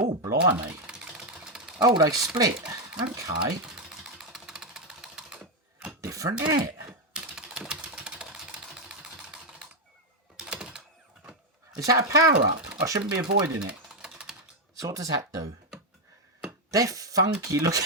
blimey. Oh, they split. Okay. Different, isn't it? Is that a power-up? I shouldn't be avoiding it. So what does that do? They're funky looking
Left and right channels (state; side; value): normal; both; correlation 0.04